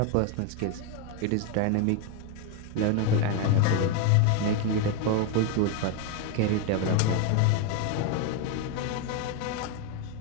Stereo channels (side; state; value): both; different; correlation 0.02